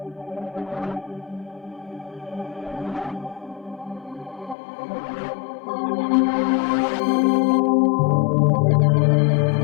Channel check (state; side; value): drops out; right; at 4.5 s